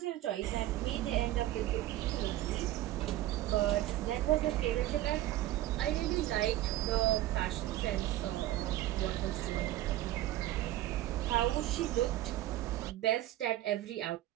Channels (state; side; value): quieter; left; 14.8 dB